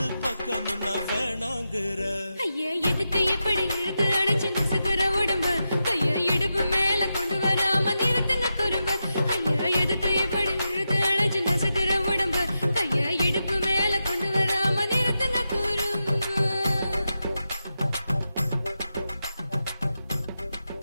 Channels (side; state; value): both; inverted; correlation -0.89